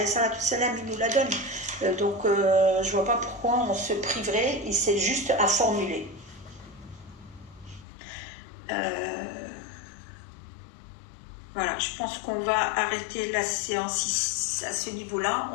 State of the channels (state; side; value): drops out; right; at 7.9 s